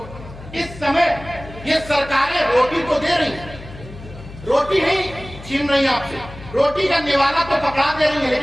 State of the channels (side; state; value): left; noise; hum, 16 dB below the sound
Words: इस समय ये सरकारें रोटी तो दे रही हैं, रोटी नहीं छीन रही आपसे, रोटी का निवाला तो पकड़ा दे रही है,